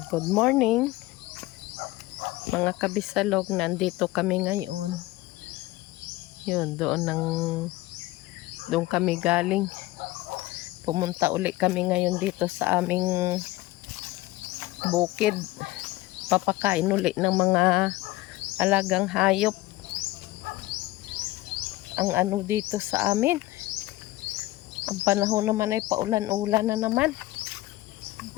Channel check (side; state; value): right; quieter; 18.3 dB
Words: good morning mga kabisalog. Nandito kami ngayon. Yun, doon kami galing. Pumunta uli kami ngayon dito sa aming bukid. Papakain uli ng mga alagang hayop. Ang ano dito sa amin, ang panahon naman ay paulan-ulan na naman.